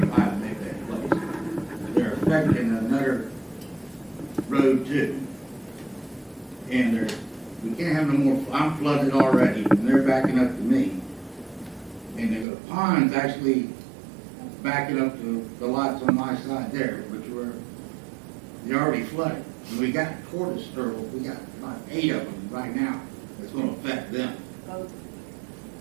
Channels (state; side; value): drops out; left; at 12.5 s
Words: Maybeck Place. They're affecting another road too. And we can't have no more, I'm flooded already, and they're backing up to me. And the pond's actually backing up to the lots on my side there, they're already flooded. And we got tortoise turtles, we got about 8 of them right now. That's gonna affect them.